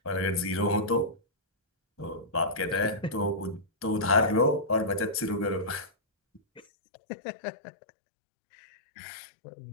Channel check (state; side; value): drops out; right; at 6.6 s